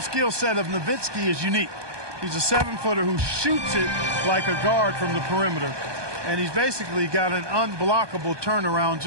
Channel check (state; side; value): late; left; 1.2 ms